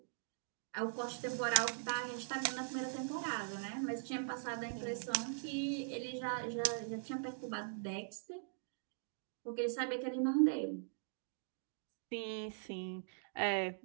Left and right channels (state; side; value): silent; left; digital silence